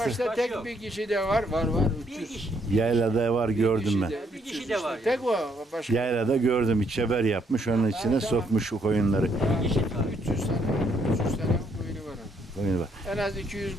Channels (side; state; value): both; normal; correlation 0.71